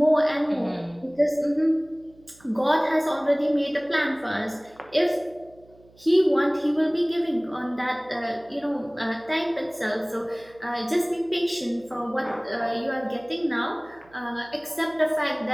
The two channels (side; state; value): right; noise; hum, 27 dB below the sound